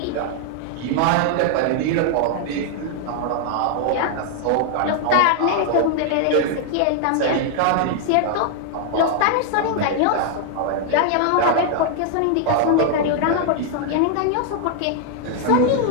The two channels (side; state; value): both; different; correlation 0.00